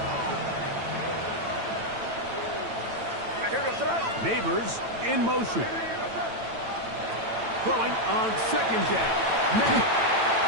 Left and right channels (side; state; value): left; late; 8.9 ms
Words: Neighbors in motion. Throwing on 2nd down. May.